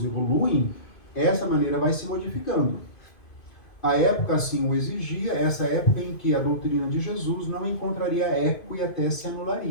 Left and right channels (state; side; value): late; right; 2.5 ms